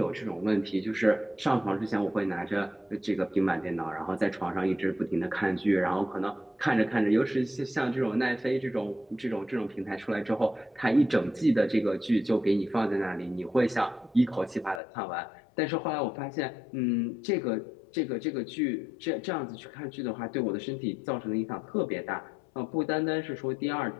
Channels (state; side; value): drops out; right; at 14.8 s